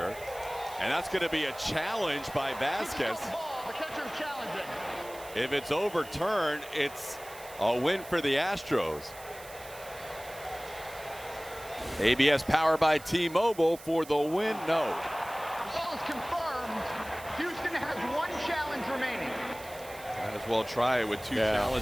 And that's going to be a challenge by Vasquez. The catcher's challenging. If it's overturned, it's a win for the Astros. ABS powered by T-Mobile for the win. No. Ball is confirmed. Houston has one challenge remaining. Might as well try it with two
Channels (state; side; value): noise; right; hiss, 17 dB below the sound